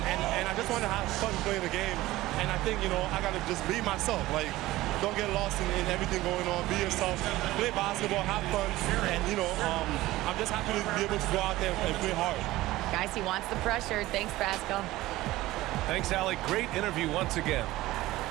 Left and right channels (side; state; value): left; quieter; 17.3 dB